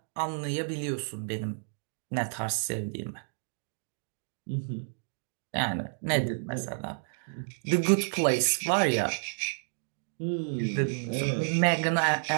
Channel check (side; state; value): left; silent; digital silence